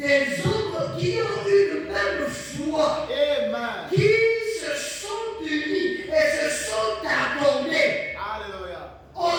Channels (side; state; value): both; identical; correlation 1.00